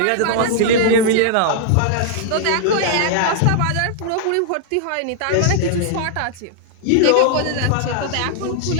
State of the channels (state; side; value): different; both; correlation -0.01